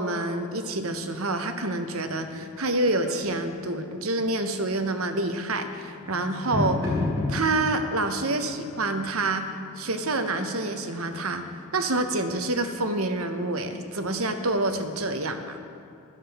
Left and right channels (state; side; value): normal; both; correlation 0.07